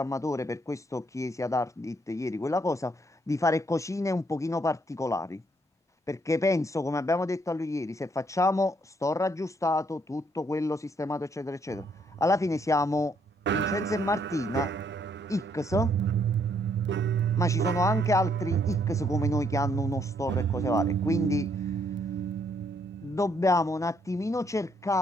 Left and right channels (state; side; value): normal; both; correlation 0.70